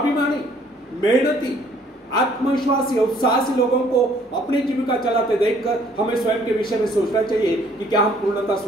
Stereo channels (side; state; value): both; normal; correlation 0.61